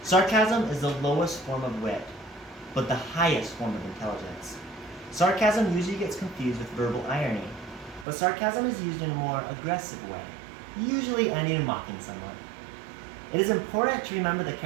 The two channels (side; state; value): left; drops out; at 8.1 s